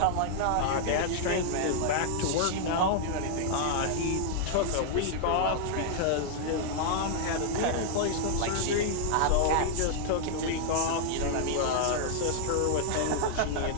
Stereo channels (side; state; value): both; different; correlation -0.01